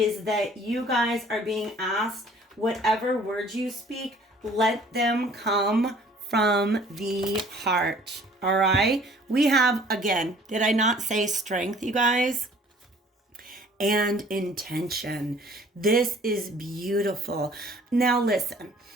that you guys are being asked, whatever words you speak, let them come from the heart. All right. We have, again, did I not say strength, you guys? And intention. This is beautiful. Now listen.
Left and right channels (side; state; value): both; normal; correlation 0.54